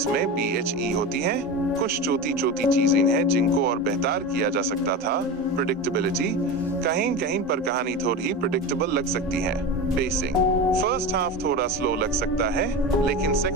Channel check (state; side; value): normal; both; correlation 0.25